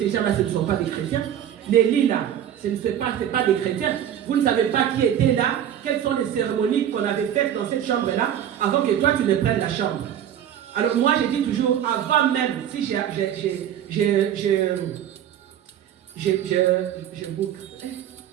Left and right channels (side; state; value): left; quieter; 10.3 dB